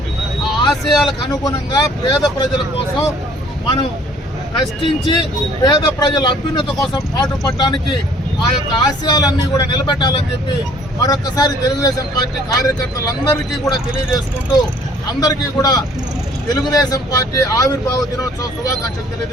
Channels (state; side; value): normal; both; correlation 0.57